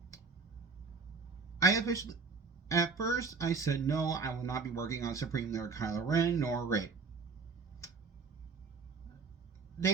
At first I said no, I will not be working on Supreme Leader Kylo Ren nor Rey.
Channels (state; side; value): quieter; left; 4.8 dB